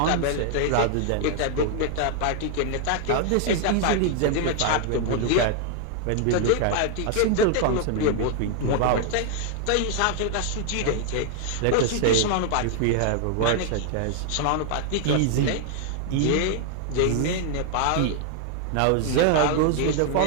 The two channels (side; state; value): both; different; correlation 0.00